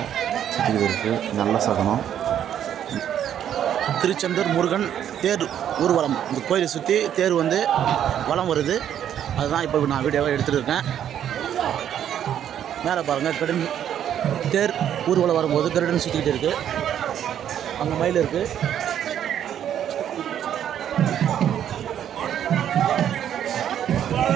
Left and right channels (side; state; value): left; quieter; 10.0 dB